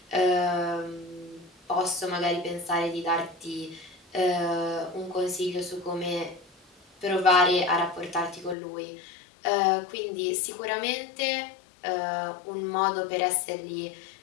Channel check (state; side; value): drops out; right; at 8.6 s